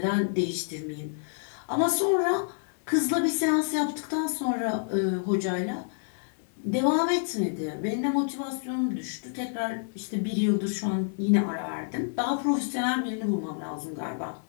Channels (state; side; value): silent; right; digital silence